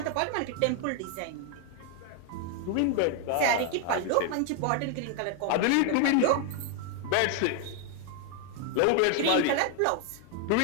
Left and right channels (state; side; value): different; both; correlation 0.01